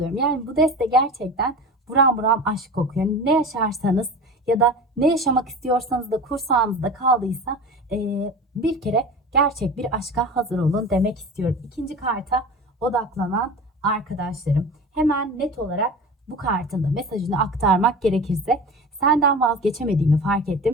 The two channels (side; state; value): both; normal; correlation 0.33